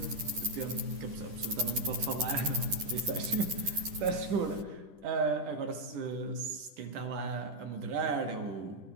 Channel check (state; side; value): late; left; 10 ms